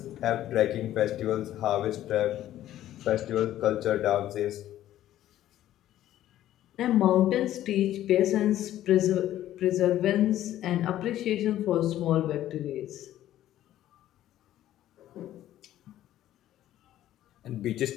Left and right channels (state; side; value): quieter; right; 13.0 dB